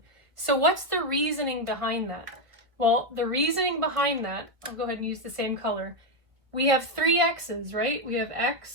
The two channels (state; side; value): late; left; 1.5 ms